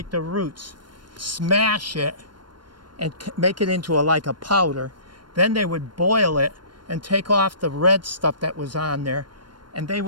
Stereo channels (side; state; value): left; late; 0.72 ms